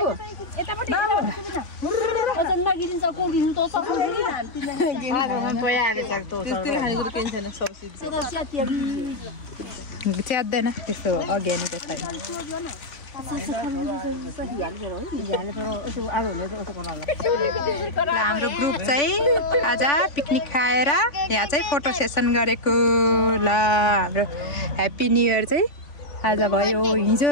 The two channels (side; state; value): right; late; 3.5 ms